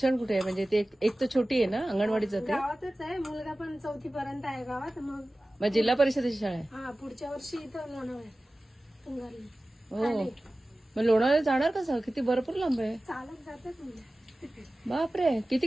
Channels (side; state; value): both; normal; correlation 0.97